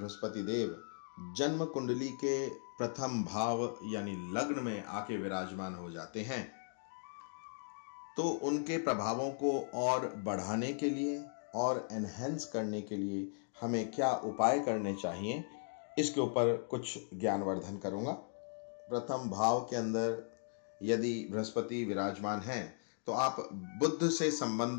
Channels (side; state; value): right; silent; digital silence